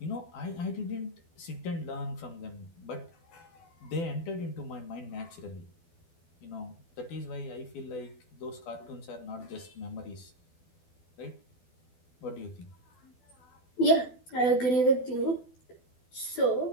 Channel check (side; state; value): right; late; 12 ms